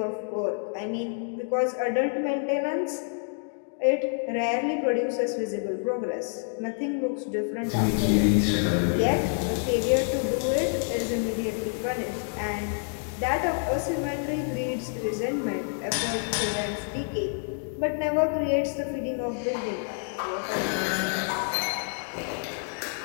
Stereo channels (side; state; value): right; silent; 60 dB below the other